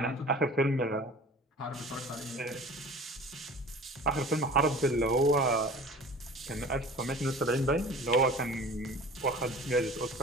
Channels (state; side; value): normal; both; correlation 0.42